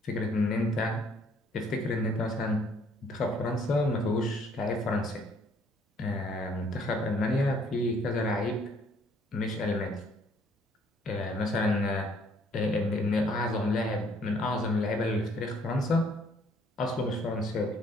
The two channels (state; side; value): normal; both; correlation 0.62